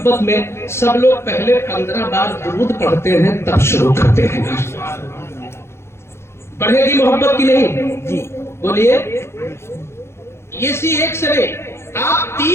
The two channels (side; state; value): right; late; 0.12 ms